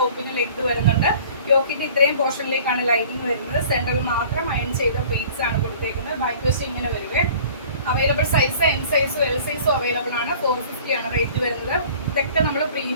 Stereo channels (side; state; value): both; inverted; correlation -0.48